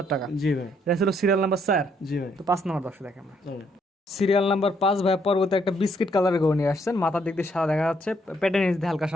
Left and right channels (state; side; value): normal; both; correlation 0.71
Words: টাকা। জি ভাই, এটা ছিল সিরিয়াল নাম্বার 4। জি ভাই, তো 5 নাম্বার দর্শক দেখেন আমরা। চলেন। সিরিয়াল নাম্বার 5 ভাই, পরবর্তী একটা বিস্কিট কালারের গরু নিয়ে আসছেন, মাথার দিক দিয়ে সাদা দেখা যাচ্ছে, পেটের নিচ দিয়ে হালকা